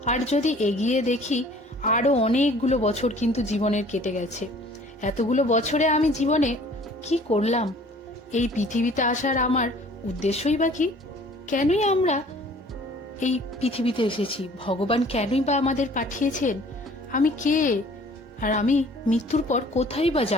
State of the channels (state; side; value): normal; both; correlation 0.52